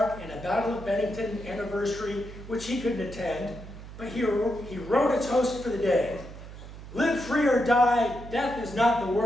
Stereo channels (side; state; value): right; noise; hum, 14 dB below the sound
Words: and a Battle of Bennington anniversary, which he couldn't attend, but he wrote a toast for the day. "Live free or die, death is not the